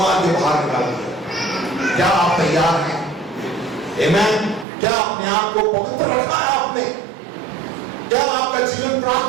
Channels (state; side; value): drops out; left; at 4.7 s